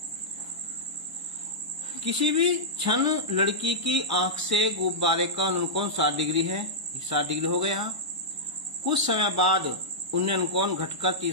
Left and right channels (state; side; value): late; left; 1.0 ms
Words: किसी भी क्षण लड़की की आंख से गुब्बारे का अनुकोण 60 डिग्री है, 60 डिग्री हो गया। कुछ समय बाद उन्हें अनुकोण घटकर